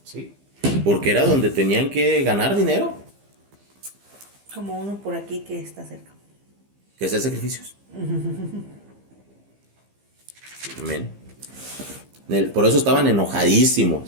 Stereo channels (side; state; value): left; late; 15 ms